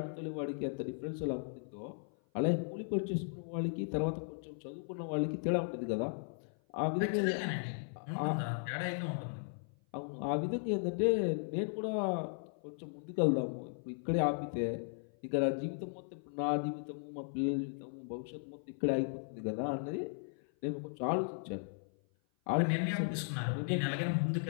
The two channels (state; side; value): silent; right; 53 dB below the other